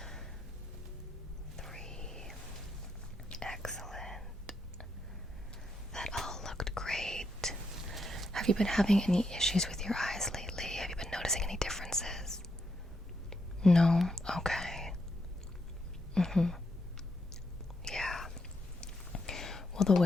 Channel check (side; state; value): both; normal; correlation 0.80